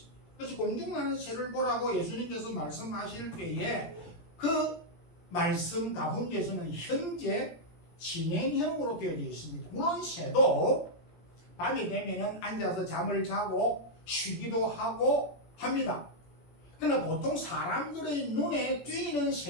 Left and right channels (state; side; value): late; right; 17 ms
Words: 그래서 공중나는 새를 보라고 예수님께서 말씀하실 때에 그 말씀 가운데서는 현재 진행형으로 되어져 있습니다. 물론 새도 밤이 되면은 앉아서 잠을 자고 쉬기도 하고 합니다. 그러나 보통 사람들의 눈에 띄는